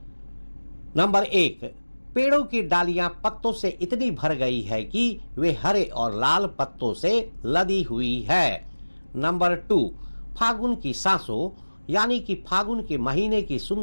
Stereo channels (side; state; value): both; inverted; correlation -1.00